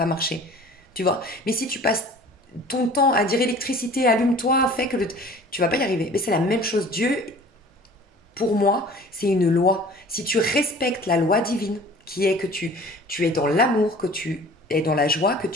marcher. Tu vois? Mais si tu passes ton temps à dire électricité, allume-toi, fais que tu vas pas y arriver. Mais c'est la même chose. Dieu, pour moi, c'est une loi. Si tu respectes la loi divine, qui est que tu es dans l'amour, que tu es dans la joie, que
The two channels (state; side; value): normal; both; correlation 0.46